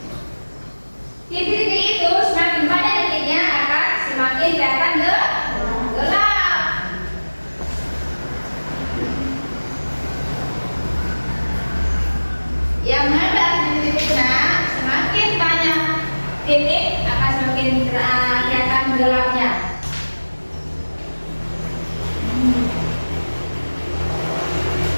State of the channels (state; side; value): inverted; both; correlation -1.00